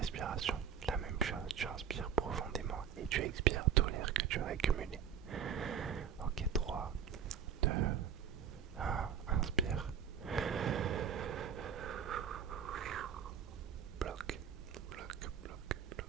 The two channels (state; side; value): quieter; left; 8.0 dB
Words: La même chose, tu inspires profondément et tu expires tout l'air que tu as accumulé. Ok, 3, 2, 1, inspire. Bloc, bloc, bloc,